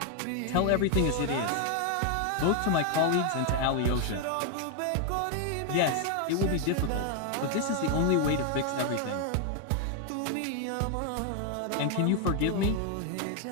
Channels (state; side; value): different; both; correlation 0.00